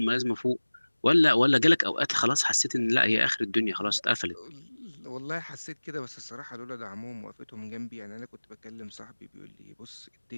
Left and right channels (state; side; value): inverted; both; correlation -1.00